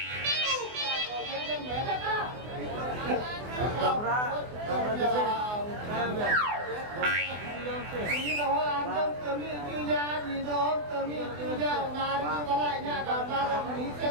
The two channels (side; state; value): left; late; 24 ms